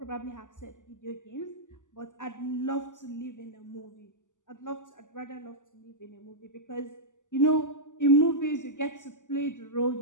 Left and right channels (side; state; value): right; late; 0.87 ms